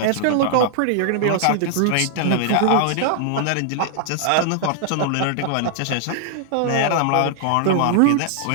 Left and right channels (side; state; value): both; different; correlation 0.00